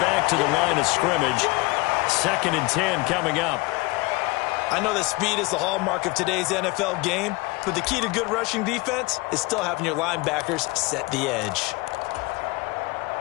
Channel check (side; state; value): right; quieter; 23.5 dB